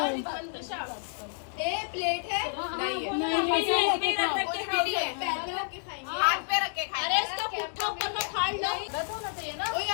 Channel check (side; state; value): right; silent; digital silence